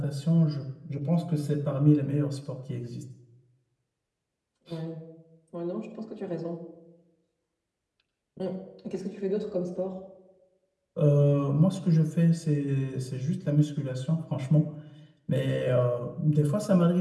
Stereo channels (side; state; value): both; identical; correlation 1.00